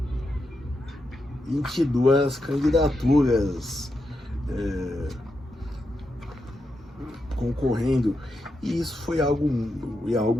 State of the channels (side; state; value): both; normal; correlation 0.86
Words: 22 candidaturas. Concorrendo, e isso foi algo